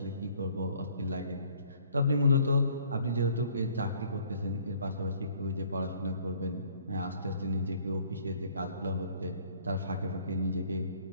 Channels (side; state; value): both; inverted; correlation -0.58